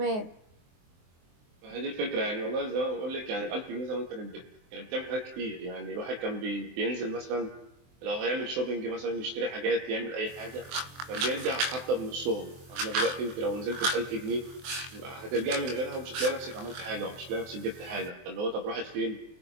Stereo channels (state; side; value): late; left; 23 ms